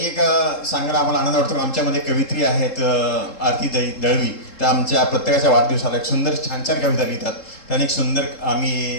एक सांगायला आम्हाला आनंद वाटतो. आमच्यामध्ये कवित्री आहेत आरती दळवी, त्या आमच्या प्रत्येकाच्या वाढदिवसाला एक सुंदर छान छान कविता लिहितात. त्याने एक सुंदर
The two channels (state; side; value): late; right; 3.7 ms